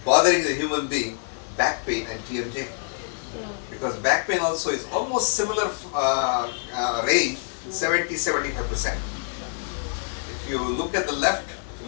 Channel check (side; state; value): right; silent; 61 dB below the other